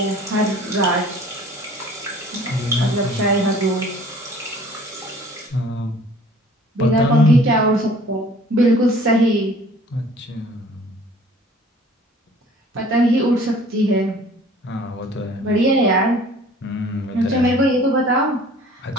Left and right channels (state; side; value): normal; both; correlation 0.51